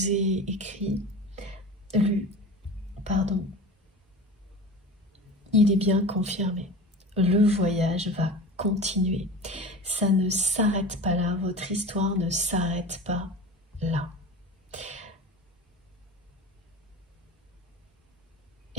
ai écrit, pardon, il est bien confirmé. Le voyage va continuer. Ça ne s'arrête pas là, votre histoire ne s'arrête pas là.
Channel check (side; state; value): both; normal; correlation 0.33